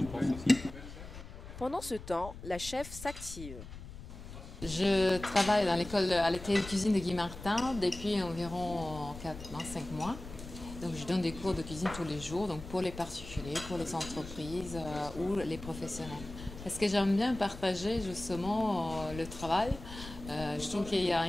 pense aussi. Pendant ce temps, la chef s'active. Je travaille à l'atelier de cuisine de Guy Martin depuis environ 5 mois. Donc je donne des cours de cuisine tous les jours, donc pour les particuliers, pour les entreprises ou les professionnels. Parce que j'aime bien partager justement le travail. Je trouve qu'il y a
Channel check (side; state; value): left; noise; rumble, 13 dB below the sound